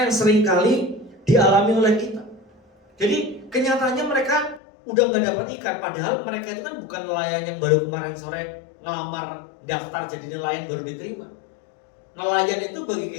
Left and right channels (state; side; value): drops out; right; at 4.6 s